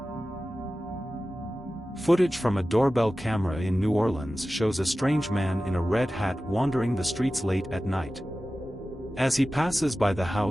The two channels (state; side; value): normal; both; correlation 0.95